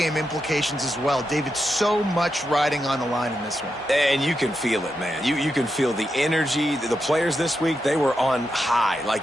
implications as well. David, so much riding on the line in this one. And you can feel it, man. You can feel the energy. The players this week, they were on high.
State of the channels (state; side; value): normal; both; correlation 0.86